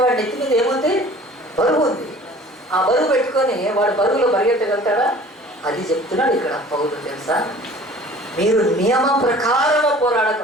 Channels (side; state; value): both; normal; correlation 0.47